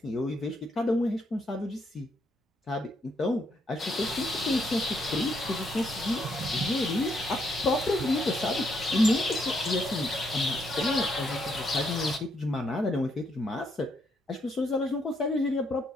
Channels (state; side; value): normal; both; correlation 0.75